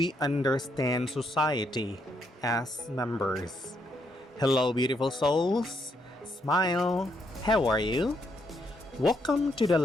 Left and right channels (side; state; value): both; normal; correlation 0.76